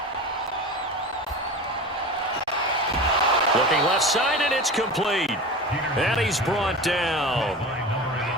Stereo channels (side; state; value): both; normal; correlation 0.31